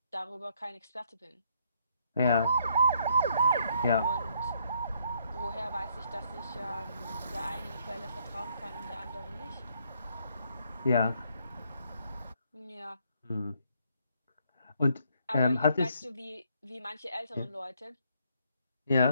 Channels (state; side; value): inverted; both; correlation -0.70